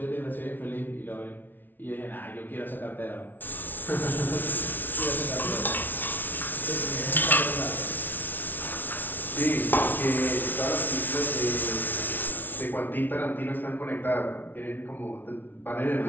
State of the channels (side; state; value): right; late; 0.088 ms